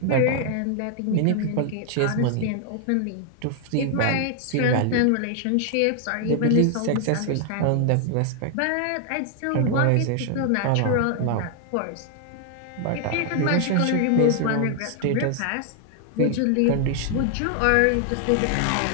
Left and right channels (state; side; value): different; both; correlation 0.00